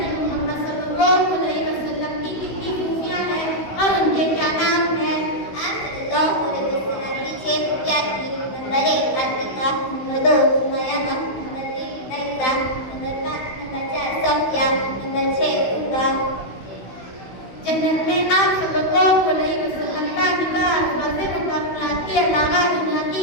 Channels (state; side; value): late; right; 15 ms